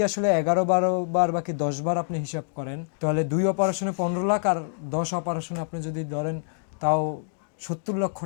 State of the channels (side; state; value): right; silent; digital silence